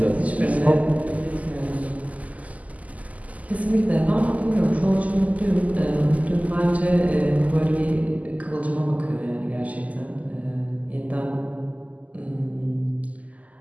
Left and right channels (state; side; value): late; left; 0.074 ms